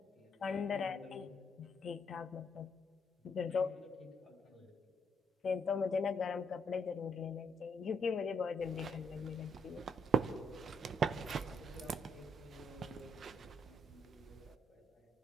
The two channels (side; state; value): both; normal; correlation 0.74